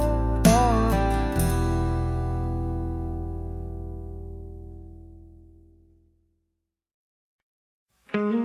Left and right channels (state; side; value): identical; both; correlation 1.00